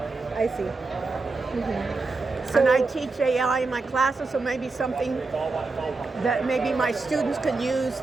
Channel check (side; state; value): left; quieter; 3.8 dB